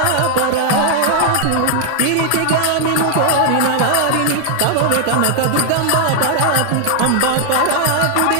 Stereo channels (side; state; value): both; different; correlation 0.00